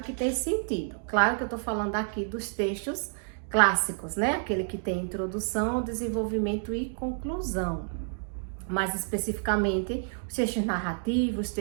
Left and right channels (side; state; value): left; silent; digital silence